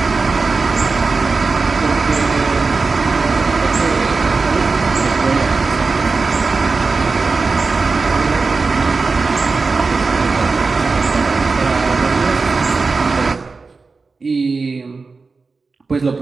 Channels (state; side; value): quieter; left; 4.2 dB